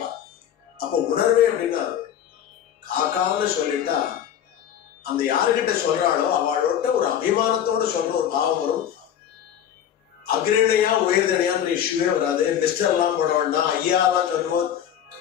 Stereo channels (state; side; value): quieter; right; 9.8 dB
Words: அப்போ உணர்வே அப்படின்னா காக்கான்னு சொல்லிட்டா அந்த யாருக்கிட்ட சொல்றாளோ அவளோட ஒரு அபிமானத்தோட சொல்ற ஒரு பாவம் வரும். அக்ரணியா உயர்தனையான்ற இஷ்யூவே வராது. மிஸ்டர் எல்லாம் போட வேண்டாம், ஐயாலாம் சொல்லுவோம்,